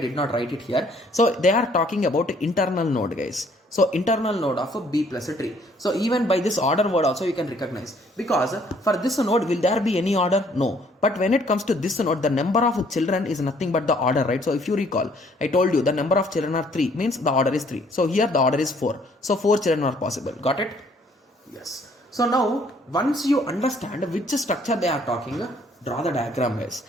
not write it here. So they are talking about internal node, guys. So internal node of a B plus a tree. So even by this order word also you can recognize, because for this node will there be any order? No. But when it comes to this node, the number of children is nothing but the order, right? So if you recall, I told you the number of children are 3, means the order is 3. So here the order is 4. So 4 children are possible. Got it? Yes. So now once you understand which structure they are talking, draw the diagram, guys.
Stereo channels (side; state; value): both; normal; correlation 0.62